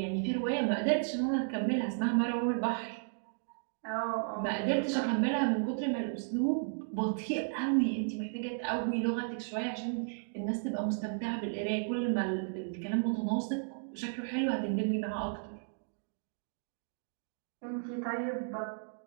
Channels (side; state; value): left; silent; digital silence